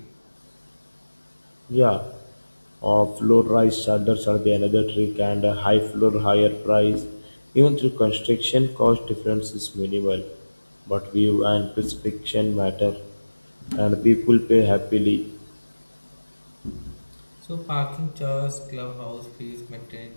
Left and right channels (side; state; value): both; inverted; correlation -1.00